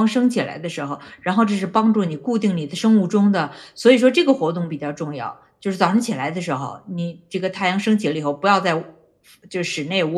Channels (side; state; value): both; identical; correlation 1.00